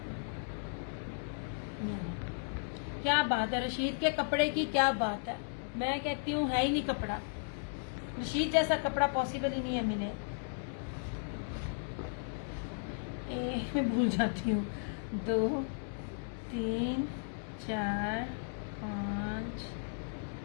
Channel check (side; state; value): right; silent; digital silence